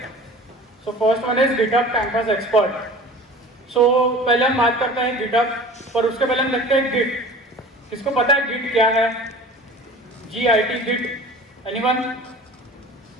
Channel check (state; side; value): normal; both; correlation 0.41